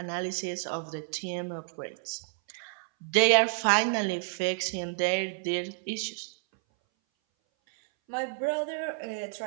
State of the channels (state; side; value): silent; left; 58 dB below the other